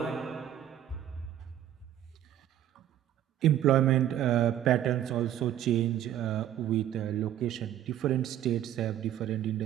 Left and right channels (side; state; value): left; quieter; 11.5 dB